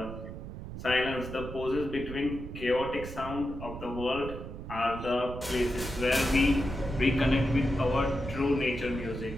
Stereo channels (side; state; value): right; noise; rumble, 10 dB below the sound